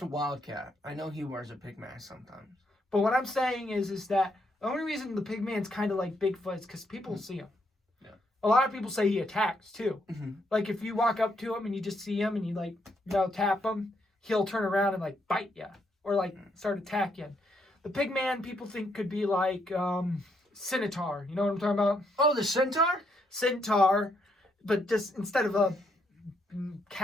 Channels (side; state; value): both; normal; correlation 0.75